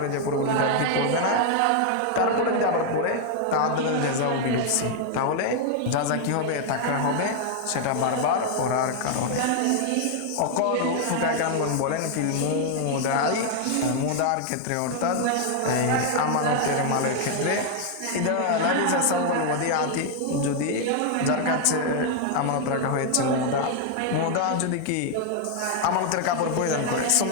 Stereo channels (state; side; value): different; both; correlation 0.00